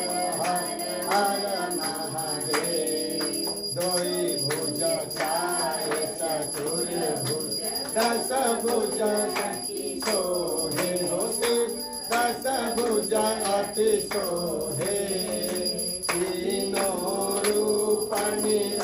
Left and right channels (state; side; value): identical; both; correlation 1.00